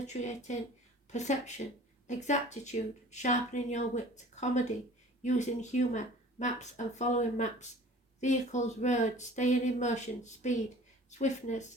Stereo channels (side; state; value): both; normal; correlation 0.46